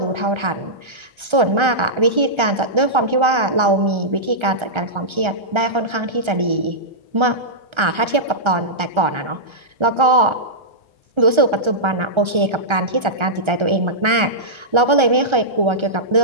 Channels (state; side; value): late; left; 1.3 ms